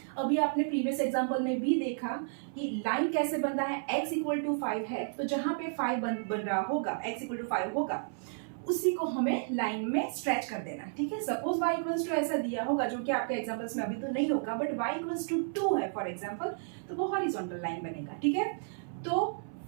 अभी आपने प्रीवियस एग्जांपल में भी देखा कि लाइन कैसे बनता है, x इक्वल टू 5 है तो जहां पे 5 बन रहा होगा, x इक्वल टू 5 होगा, उसी को हमें लाइन में स्ट्रेच कर देना. ठीक है, सपोज y इक्वल्स टू ऐसा दिया होगा जो कि आपके एग्जांपल्स में अभी तो नहीं होगा, बट y इक्वल्स टू 2 है फॉर एग्जांपल, तो वो हॉरिजॉन्टल लाइन बनेगा. ठीक है, तो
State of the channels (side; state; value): left; silent; 56 dB below the other